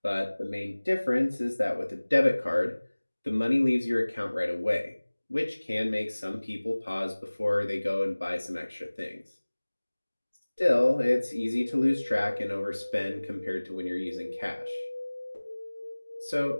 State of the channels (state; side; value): inverted; both; correlation -1.00